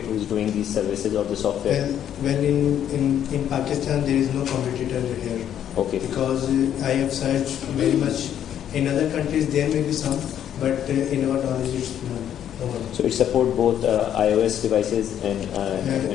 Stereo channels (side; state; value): right; quieter; 10.0 dB